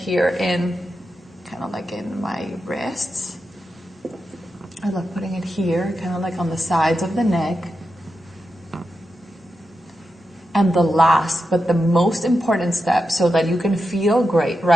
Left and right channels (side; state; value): both; normal; correlation 0.88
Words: in, kind of like in my wrists. I love putting it here, kind of like on the sides of the neck. And the last, but the most important step so that you can feel great